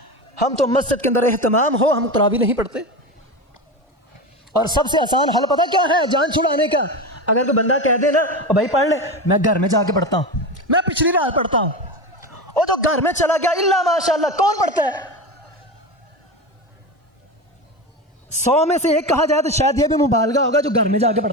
ہم تو مسجد کے اندر اہتمام ہو, ہم تراویح نہیں پڑھتے. اور سب سے آسان حل پتہ کیا ہے جان چھڑانے کا؟ اگر کوئی بندہ کہہ دے نا بھائی پڑھ لے, میں گھر میں جا کے پڑھتا ہوں, میں پچھلی رات پڑھتا ہوں, وہ تو گھر میں چلا گیا, اللہ ماشاءاللہ کون پڑھتا ہے؟ 100 میں سے 1 کہا جائے تو شاید یہ بھی مبالغہ ہوگا جو گھر میں جا کے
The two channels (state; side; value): normal; both; correlation 0.22